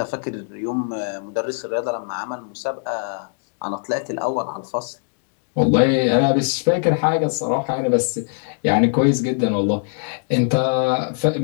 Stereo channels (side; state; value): right; silent; digital silence